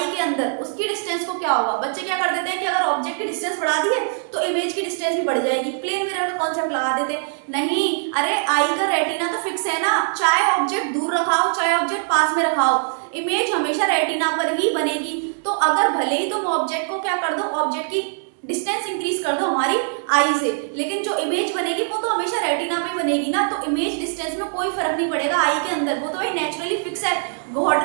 के अंदर, उसकी डिस्टेंस को क्या होगा। बच्चे क्या कर देते हैं कि अगर ऑब्जेक्ट की डिस्टेंस बढ़ा दी है तो इमेज की डिस्टेंस भी बढ़ जाएगी, प्लेन मिरर का कॉन्सेप्ट लगा देते। नहीं, अरे आई का रेटिना तो फिक्स है ना, चाहे ऑब्जेक्ट दूर रखाओ चाहे ऑब्जेक्ट पास में रखाओ, इमेज हमेशा रेटिना पर ही बनेगी। तो अगर भले ही तुम ऑब्जेक्ट को क्या कर दो, ऑब्जेक्ट की डिस्टेंस इंक्रीज कर दो हमारी आई से, लेकिन जो इमेज बनेगी वो तो हमेशा रेटिना पे बनेगी ना। तो इमेज डिस्टेंस में कोई फर्क नहीं पड़ेगा आई के अंदर, वो तो भाई नेचुरली फिक्स है, गॉड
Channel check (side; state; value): left; silent; 64 dB below the other